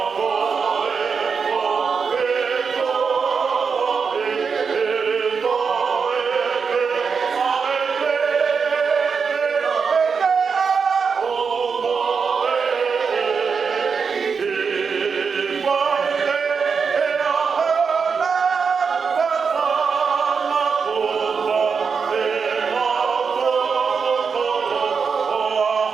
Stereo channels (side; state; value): left; quieter; 5.7 dB